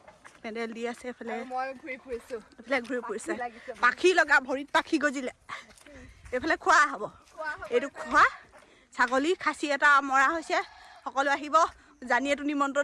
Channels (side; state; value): both; identical; correlation 1.00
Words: পেণ্ডেল দি আছে। এফালে ঘূৰি ফুৰিছে পাখি লগা ভৰিত পাখি গজিলে। এইফালে খোৱা হ'ব এইটো খোৱা ছাগলী খাচী এটা মৰা হৈছে। সকলো আহিব। জানিয়েতো